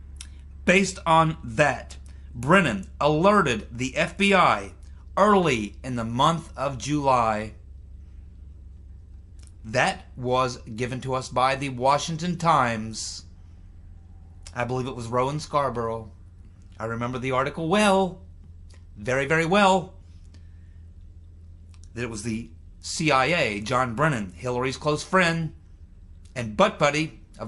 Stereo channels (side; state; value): both; identical; correlation 1.00